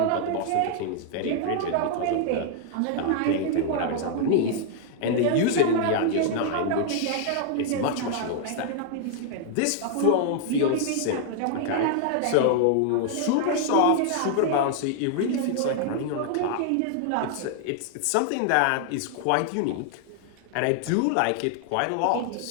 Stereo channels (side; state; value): both; different; correlation 0.00